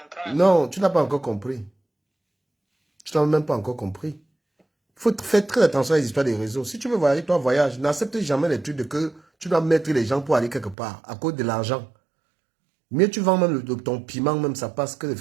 Non, tu n'as pas encore compris. Tu n'as même pas encore compris. Il faut faire très attention à les histoires des réseaux. Si tu veux voyager, toi voyage. N'accepte jamais les trucs de que tu dois mettre les gens pour aller quelque part à cause de l'argent. Mieux tu vends même ton piment, même ça passe que de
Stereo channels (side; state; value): left; drops out; at 10.8 s